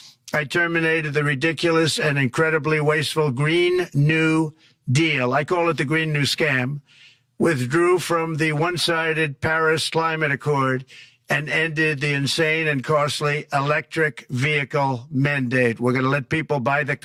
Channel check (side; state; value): both; identical; correlation 1.00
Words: I terminated the ridiculous and incredibly wasteful Green New Deal. I call it the Green New Scam. Withdrew from the one-sided Paris Climate Accord and ended the insane and costly electric vehicle mandate. We're going to let people buy the